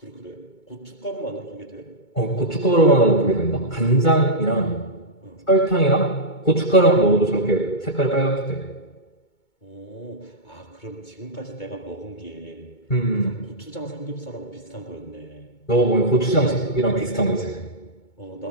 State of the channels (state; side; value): late; right; 2.2 ms